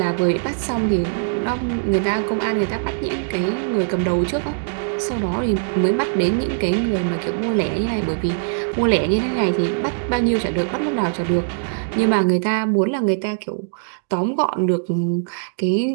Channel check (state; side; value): silent; left; digital silence